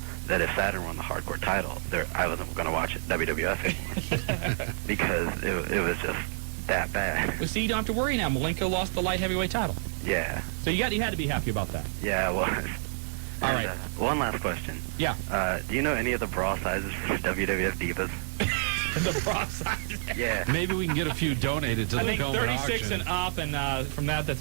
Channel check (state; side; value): silent; left; digital silence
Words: that if Saturn won the hardcore title, I wasn't going to watch it WWF anymore because it was just that bad. Well, see, you don't have to worry now. Malenko lost the light heavyweight title. Yeah. So you had to be happy about that. Yeah, I was. All right. One last question. Yeah. Do you know any of the bra sizes for WWF Divas? The bra sizes? Yeah. Maybe we can get a few donated to the film auction. I think 36 and up, and from that's